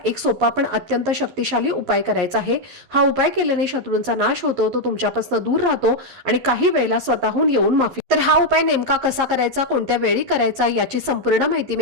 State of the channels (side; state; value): left; late; 11 ms